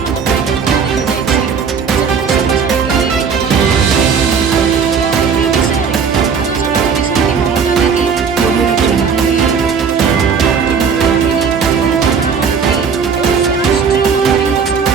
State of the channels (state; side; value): quieter; left; 6.1 dB